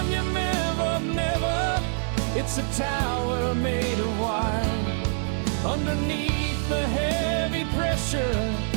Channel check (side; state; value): left; silent; digital silence